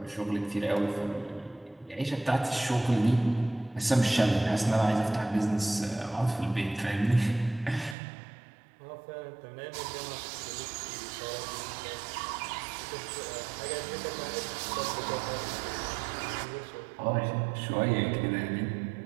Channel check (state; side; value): drops out; left; at 8.0 s